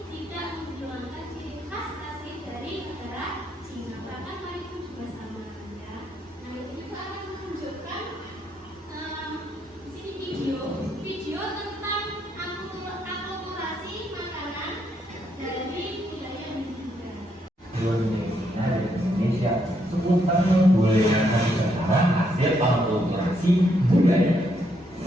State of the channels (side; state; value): both; normal; correlation 0.75